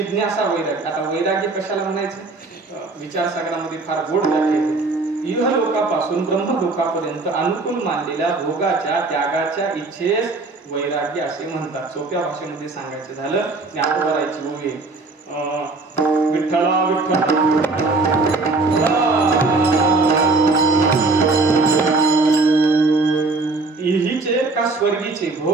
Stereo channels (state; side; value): quieter; left; 3.5 dB